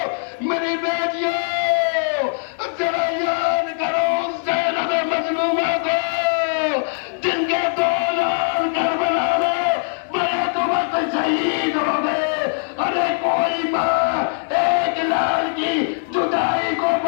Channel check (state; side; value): silent; right; digital silence